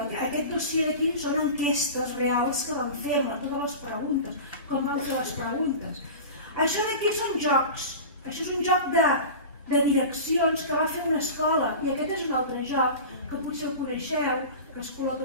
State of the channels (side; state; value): both; inverted; correlation -0.32